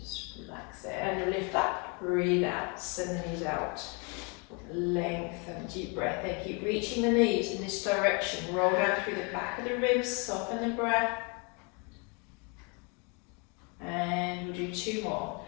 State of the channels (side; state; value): right; quieter; 33.4 dB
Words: relax there, and you lift up, breathe out, send the knees out. Lengthen, deep breath there, keep reaching the knees in this direction. Roll down through the back of the ribs, soften the breath. And we'll do 2 more.